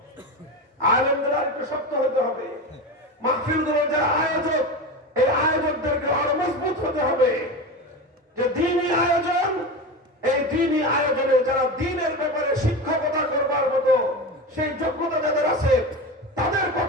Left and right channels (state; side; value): normal; both; correlation 0.24